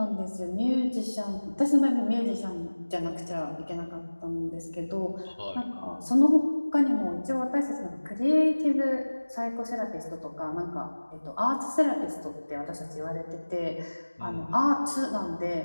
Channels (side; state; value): both; inverted; correlation -1.00